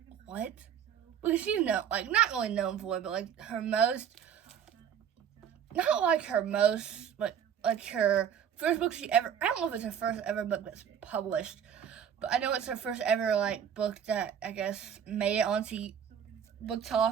what? Because she's not really known for it, but like her most, not like her most, like her first book she ever, I don't know if it's her first ever book that's published, but I know it's her first ever like book that I guess made it onto Book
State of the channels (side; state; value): left; quieter; 8.5 dB